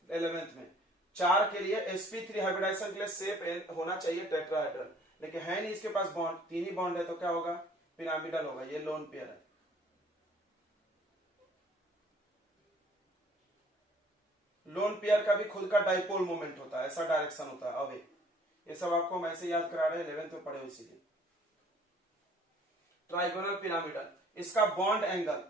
11th में, 4 के लिए sp3 हाइब्रिडाइजेशन के लिए शेप होना चाहिए टेट्राहेड्रल, लेकिन है नहीं इसके पास बॉन्ड, 3 ही बॉन्ड है, तो क्या होगा, पिरामिडल होगा, ये लोन पेयर है। लोन पेयर का भी खुद का डाइपोल मोमेंट होता है, ऐसा डायरेक्शन होता है। अब ये सब आपको हम ऐसे याद करा रहे हैं, 11th में पढ़े हो इसीलिए। ट्राइगोनल पिरामिडल, इसका बॉन्ड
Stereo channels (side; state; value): both; normal; correlation 0.56